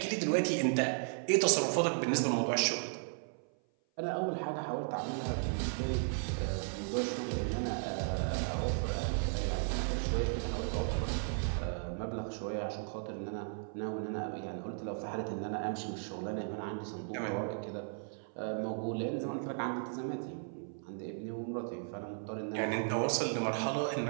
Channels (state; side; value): silent; left; 54 dB below the other